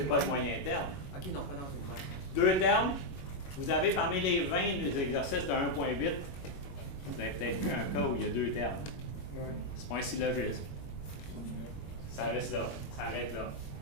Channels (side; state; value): right; late; 21 ms